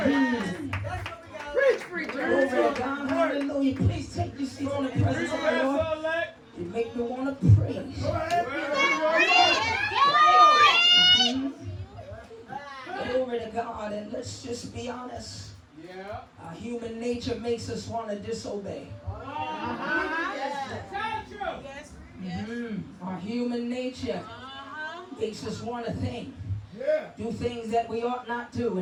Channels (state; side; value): identical; both; correlation 1.00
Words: Hallelujah. Please take your seats in the presence of the Lord. You make me want to praise. Glory to God. And let's just be honest. Our human nature makes us want to disobey. Our human nature makes us want to think. Do things that we ought not do.